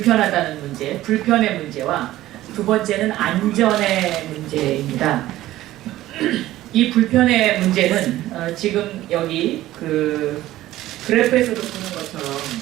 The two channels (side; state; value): left; quieter; 15.2 dB